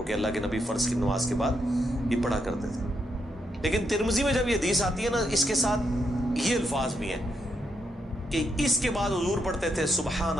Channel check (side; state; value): both; normal; correlation 0.80